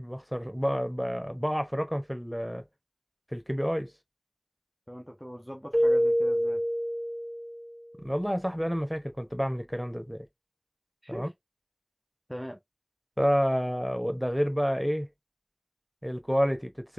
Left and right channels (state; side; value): identical; both; correlation 1.00